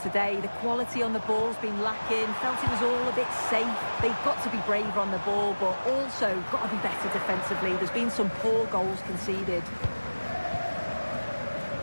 The quality on the ball's been lacking. Felt it was all a bit safe. They've got to be braver on the ball, but also got to be better defensively. There's been some poor goals conceded.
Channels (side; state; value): both; inverted; correlation -1.00